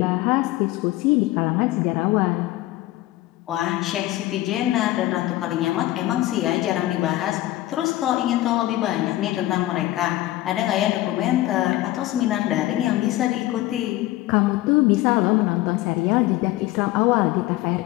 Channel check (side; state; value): right; quieter; 16.4 dB